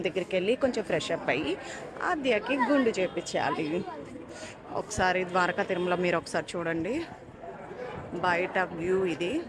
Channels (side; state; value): both; identical; correlation 1.00